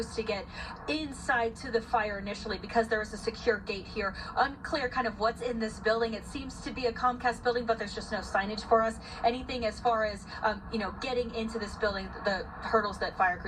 to get inside to the fire initially because there was a secure gate here. Unclear kind of what's in this building. It seems to be a Comcast building, but there's just no signage for us. Anything as far as, getting into this building, the hurdles that fire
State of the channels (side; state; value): both; identical; correlation 1.00